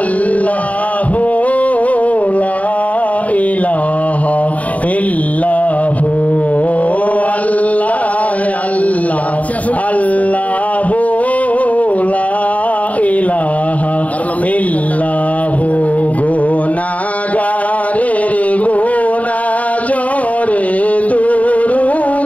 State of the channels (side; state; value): right; late; 0.070 ms